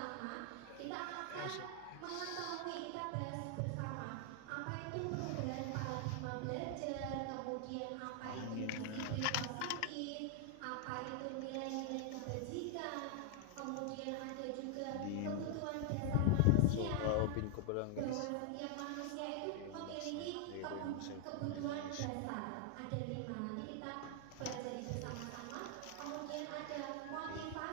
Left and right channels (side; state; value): both; different; correlation 0.00